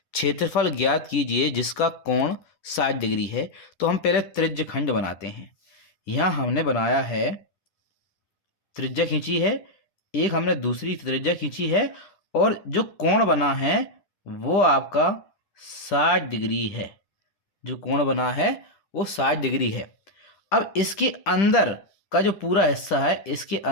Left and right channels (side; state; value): right; late; 10 ms